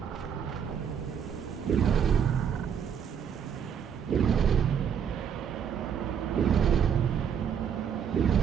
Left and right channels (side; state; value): left; quieter; 7.9 dB